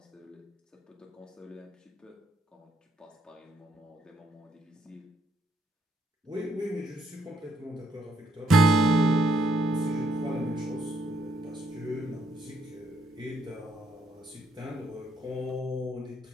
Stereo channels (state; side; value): normal; both; correlation 0.72